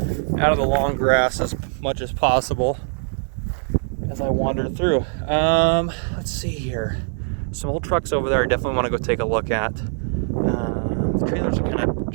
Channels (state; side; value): silent; left; digital silence